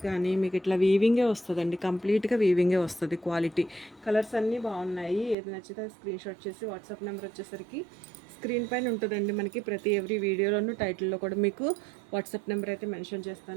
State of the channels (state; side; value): drops out; left; at 5.4 s